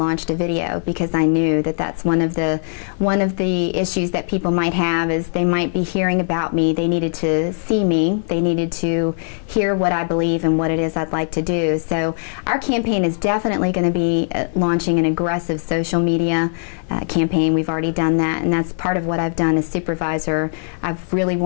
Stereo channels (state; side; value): silent; right; digital silence